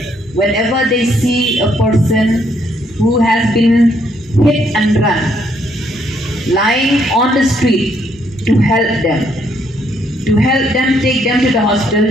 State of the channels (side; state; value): both; normal; correlation 0.71